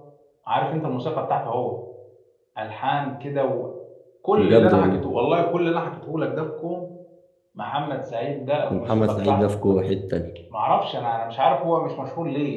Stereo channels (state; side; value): identical; both; correlation 1.00